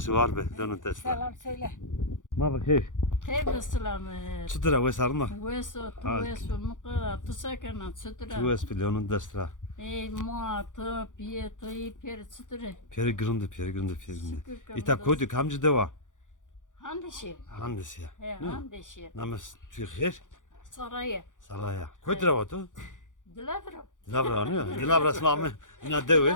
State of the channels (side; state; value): right; late; 0.87 ms